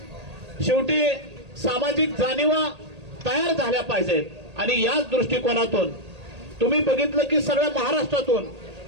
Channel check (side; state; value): left; late; 1.8 ms